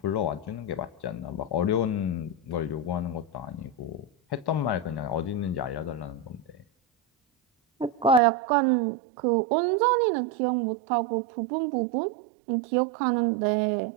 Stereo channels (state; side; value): drops out; left; at 8.2 s